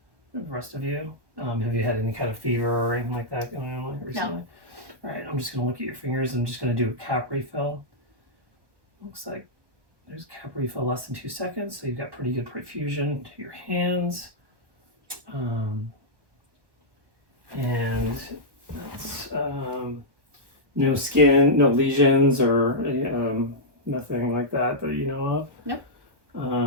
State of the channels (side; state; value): left; late; 1.1 ms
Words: rest of you. Have you had any kind of fever or anything like that going on recently? No. All right, I'm just going to look at your fingers. I'm just going to do a cap refill. Looks like there's cap refill less than 2 seconds, so you've got pretty good perfusion to your hands. And that's no skin, no lesions or nothing like that you know of. Nope.